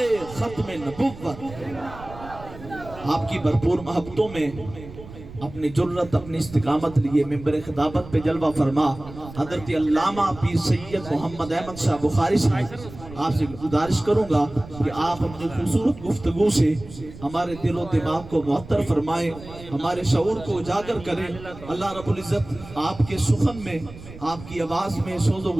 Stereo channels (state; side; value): noise; right; rumble, 16 dB below the sound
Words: ختم نبوت۔ آپ کی بھرپور محبتوں میں اپنی جرت، اپنی استقامت لیے ممبر خطابت پہ جلوہ فرما حضرت علامہ پیر سید محمد احمد شاہ بخاری صاحب، آپ سے گزارش کروں گا کہ آپ اپنی خوبصورت گفتگو سے ہمارے دل و دماغ کو معطر فرمائیں، ہمارے شعور کو اجاگر کریں۔ اللہ رب العزت آپ کے سخن میں، آپ کی آواز میں، سوز و